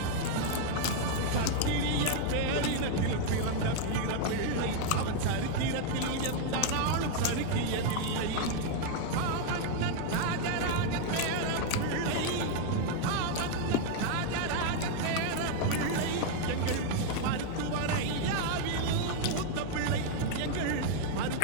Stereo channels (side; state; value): both; different; correlation 0.00